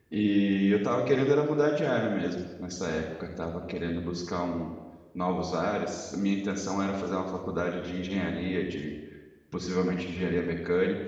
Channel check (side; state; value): both; identical; correlation 1.00